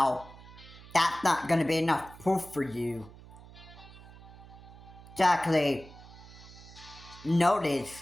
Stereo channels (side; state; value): right; noise; hum, 19 dB below the sound